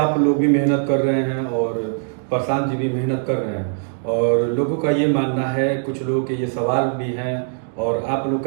लोग भी मेहनत कर रहे हैं और प्रशांत जी भी मेहनत कर रहे हैं, और लोगों का ये मानना है, कुछ लोगों के ये सवाल भी हैं, और आप लोग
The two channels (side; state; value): left; silent; digital silence